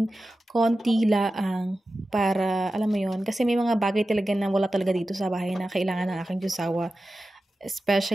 konti laang para, alam mo yun. Kasi may mga bagay talaga na wala talaga dito sa bahay na kailangan ng aking asawa.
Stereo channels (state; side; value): normal; both; correlation 0.94